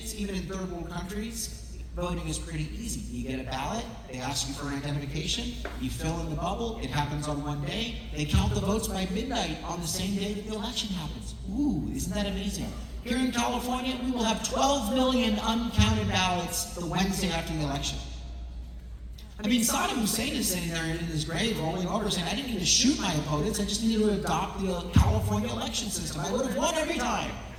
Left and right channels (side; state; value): both; identical; correlation 1.00